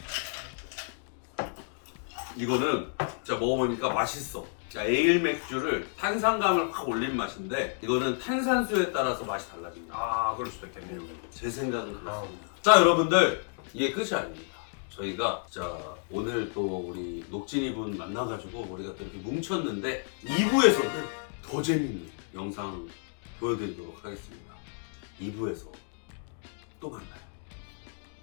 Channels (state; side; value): silent; right; 57 dB below the other